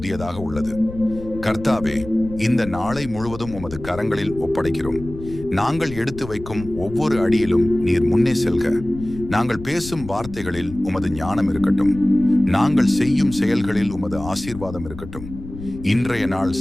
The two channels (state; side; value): noise; left; rumble, 13 dB below the sound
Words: உள்ளது. கர்த்தாவே, இந்த நாளை முழுவதும் உமது கரங்களில் ஒப்படைக்கிறோம். நாங்கள் எடுத்து வைக்கும் ஒவ்வொரு அடியிலும் நீர் முன்னே செல்க. நாங்கள் பேசும் வார்த்தைகளில் உமது ஞானம் இருக்கட்டும். நாங்கள் செய்யும் செயல்களில் உமது ஆசீர்வாதம் இருக்கட்டும். இன்றைய நாள்